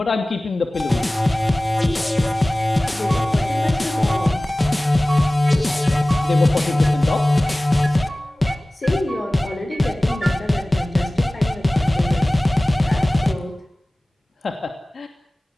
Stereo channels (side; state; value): both; normal; correlation 0.98